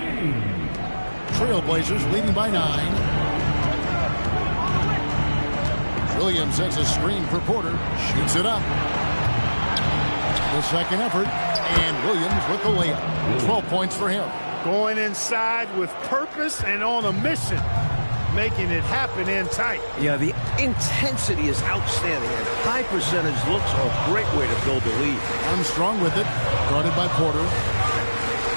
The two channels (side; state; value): both; inverted; correlation -1.00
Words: Trailblazers leading by 9. Williams sets a screen for Porter. Shoots it up. The second effort. And Williams with the layup. 12 points for him. Going inside with purpose and on a mission. Making it happen in tight. Yeah, the intensity is outstanding, and high percentage looks are a great way to build a lead. Armstrong with it, guarded by Porter.